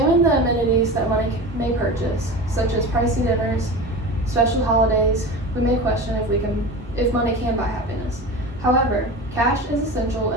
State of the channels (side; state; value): both; normal; correlation 0.31